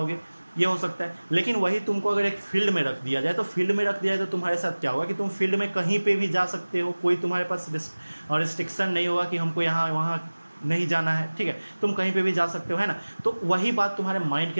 ये हो सकता है। लेकिन वही तुमको अगर एक फील्ड में रख दिया जाए, तो फील्ड में रख दिया जाए तो तुम्हारे साथ क्या होगा कि तुम फील्ड में कहीं पे भी जा सकते हो, कोई तुम्हारे पास रिस्ट्रिक्शन नहीं होगा कि हमको यहाँ वहाँ नहीं जाना है। ठीक है, तुम कहीं पे भी जा सकते हो, है ना। तो वही बात तुम्हारे माइंड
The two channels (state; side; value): inverted; both; correlation -1.00